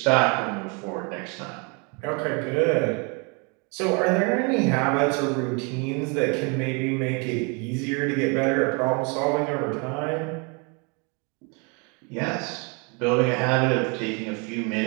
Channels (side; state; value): left; quieter; 33.1 dB